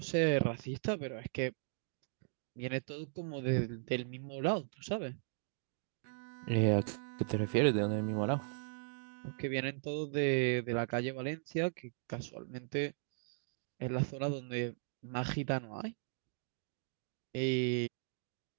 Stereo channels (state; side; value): silent; left; digital silence